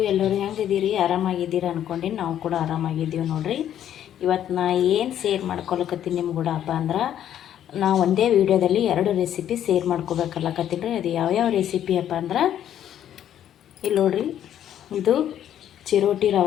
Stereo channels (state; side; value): quieter; right; 10.6 dB